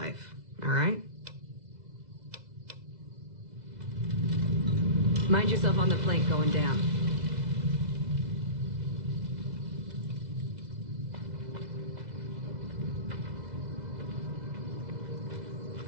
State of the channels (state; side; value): late; left; 2.0 ms